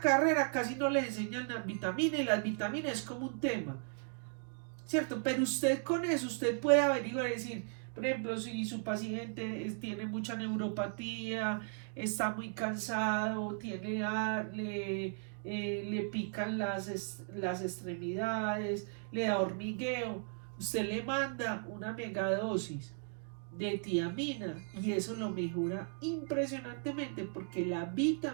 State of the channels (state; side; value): silent; left; 54 dB below the other